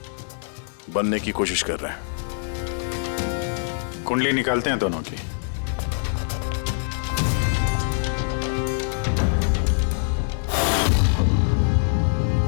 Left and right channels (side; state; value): right; silent; 63 dB below the other